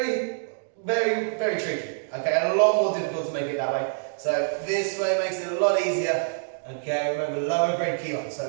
very, very tricky. Okay, and a lot more difficult to make it that way. So this way makes it a lot easier. Okay, remember lower grade Kihon,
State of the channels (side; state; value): left; silent; digital silence